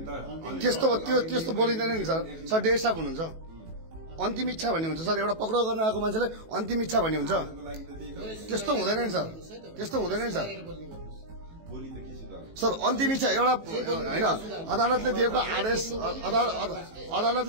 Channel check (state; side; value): late; left; 18 ms